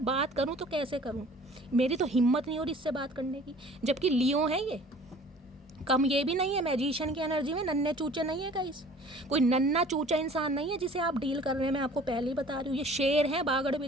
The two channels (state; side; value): normal; both; correlation 0.49